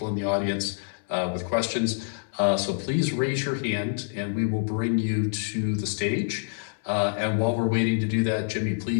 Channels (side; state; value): right; silent; 59 dB below the other